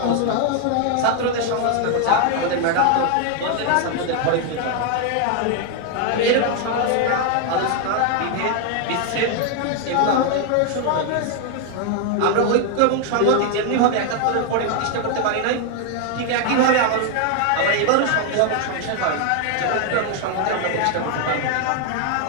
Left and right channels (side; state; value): both; different; correlation 0.01